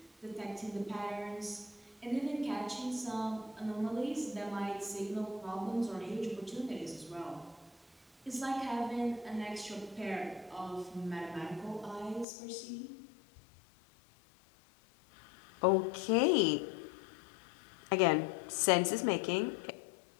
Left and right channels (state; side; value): drops out; right; at 12.2 s